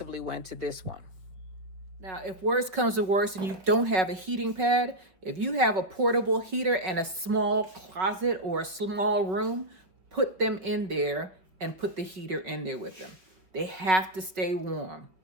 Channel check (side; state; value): left; late; 5.2 ms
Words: went to this one. Now, if worse comes to worse and you don't have a heating pad, if you have a portable heater and a small closet or a small room, put them in there and put the heater in there with them. They have to stay warm.